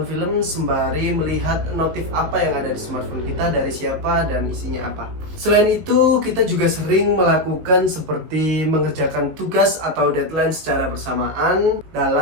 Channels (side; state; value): left; late; 19 ms